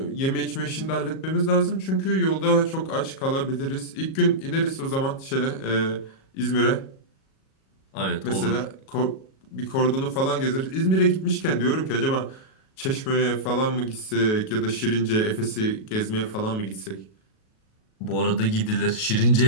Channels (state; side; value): late; right; 37 ms